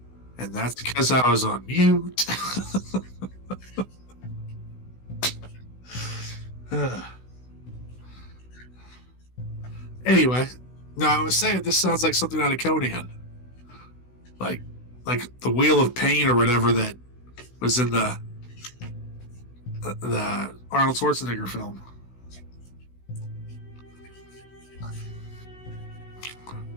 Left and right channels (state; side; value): late; right; 16 ms